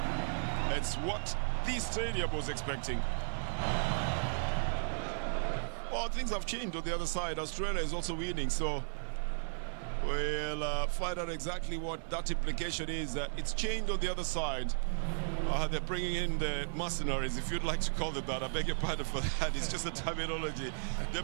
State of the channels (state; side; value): silent; left; digital silence